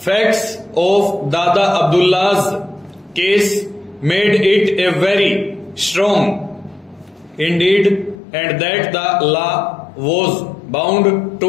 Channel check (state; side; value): drops out; right; at 8.2 s